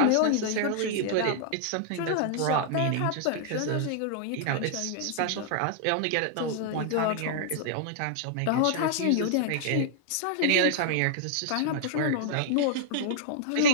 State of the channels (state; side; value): different; both; correlation -0.01